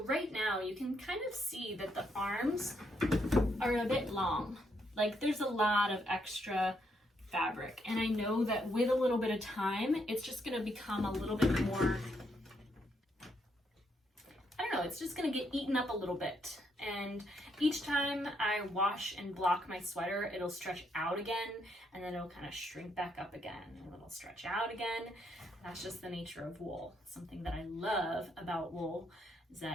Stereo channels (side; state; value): both; normal; correlation 0.75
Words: right now you can kind of see that the arms are a bit long. Like there's a lot of extra fabric, and I know that with a little bit of time it's just going to become a little bit more, I don't know, it's just going to get eaten up a little bit. And each time I wash and block my sweater, it'll stretch out again, and then it'll kind of shrink back up again, and it'll stretch out again. That's just the nature of wool. Something that I love about wool is